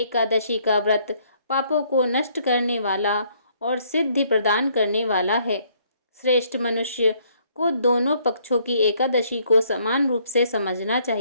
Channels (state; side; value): inverted; both; correlation -0.66